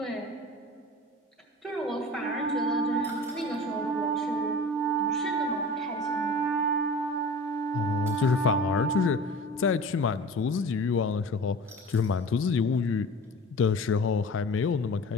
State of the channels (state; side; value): normal; both; correlation 0.38